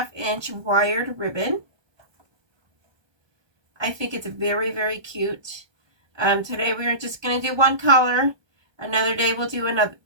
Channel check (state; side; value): late; left; 1.2 ms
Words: wired ribbon. I think it's very, very cute. Today we're just going to do one color. Another day we'll do another,